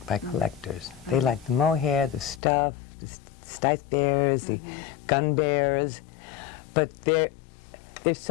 by collectors. They like the mohair, the stuff, the stipe bears, the gun bears, but there's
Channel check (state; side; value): drops out; right; at 2.4 s